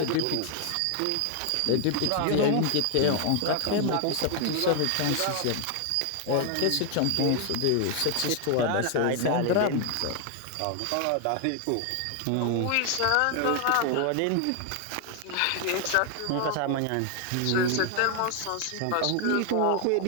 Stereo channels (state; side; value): different; both; correlation 0.00